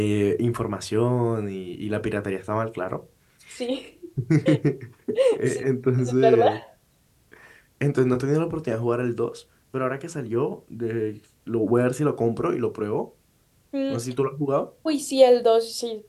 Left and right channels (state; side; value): identical; both; correlation 1.00